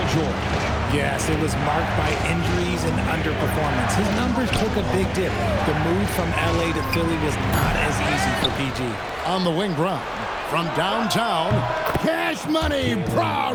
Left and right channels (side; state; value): both; identical; correlation 1.00